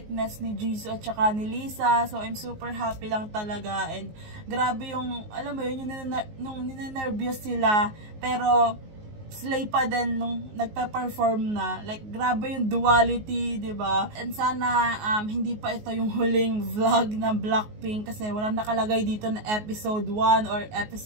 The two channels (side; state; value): left; late; 19 ms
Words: ni Jisoo at saka ni Lisa. So I'm super happy lang talaga, and grabe yung, alam mo yun, yung ninenervyos sila pero slay pa din nung nagpa-perform na. Like, grabe yung duality, diba? And sana hindi pa ito yung huling vlog ng Blackpink kasi walang nakalagay dito na episode 1 or